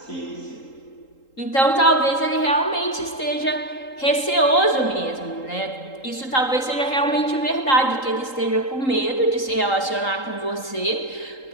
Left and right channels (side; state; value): right; late; 3.8 ms